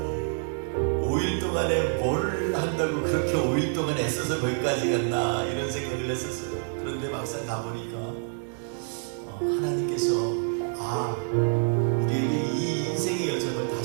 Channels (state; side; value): silent; left; 60 dB below the other